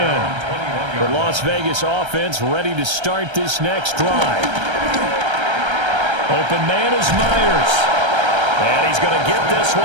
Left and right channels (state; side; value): late; left; 1.3 ms